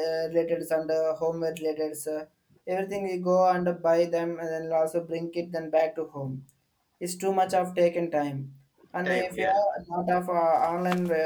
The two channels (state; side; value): identical; both; correlation 1.00